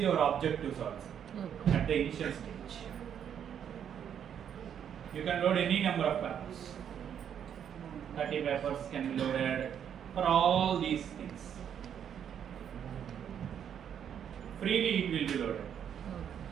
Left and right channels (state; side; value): quieter; left; 8.8 dB